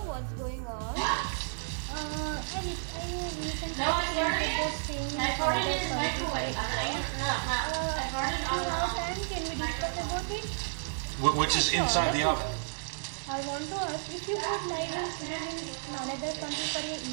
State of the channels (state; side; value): silent; left; digital silence